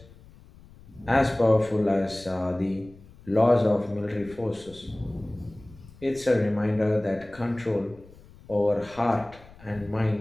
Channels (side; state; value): left; noise; rumble, 22 dB below the sound